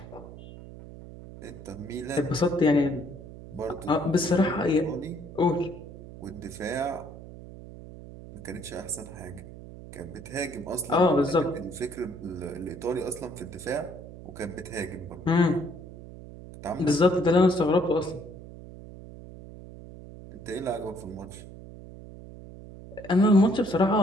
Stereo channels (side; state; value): right; noise; hum, 15 dB below the sound